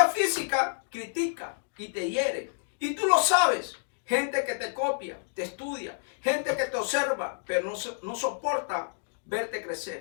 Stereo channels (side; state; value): right; silent; digital silence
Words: física critica y te hiere. Y tú lo sabes. Gente que te copia, te estudia. Gente que te observa, pero no soporta verte